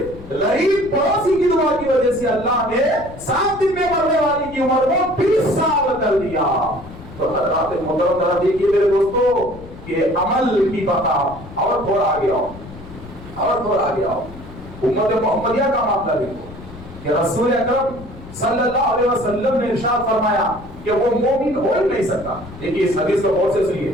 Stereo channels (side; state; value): left; noise; rumble, 16 dB below the sound